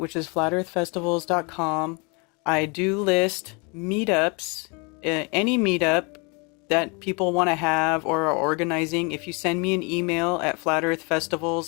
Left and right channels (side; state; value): right; quieter; 31.3 dB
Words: is flatearthfestivals.com, I do list meetups, any meetup that people want to have or are organizing. If you send me an email at